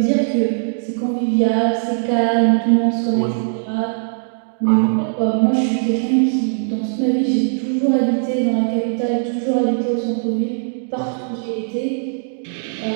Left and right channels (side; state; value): left; silent; digital silence